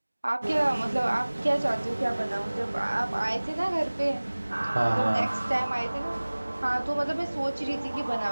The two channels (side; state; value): both; inverted; correlation -1.00